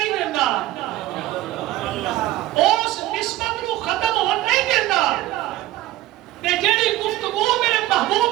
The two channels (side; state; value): left; quieter; 16.2 dB